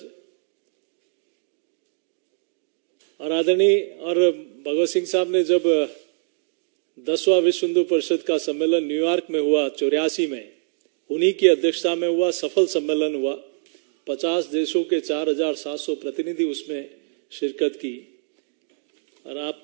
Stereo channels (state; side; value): silent; left; digital silence